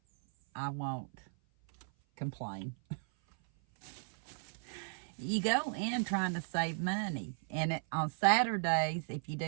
I won't complain. you go in trying to save money. And on Saturdays, if you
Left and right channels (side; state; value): left; silent; 54 dB below the other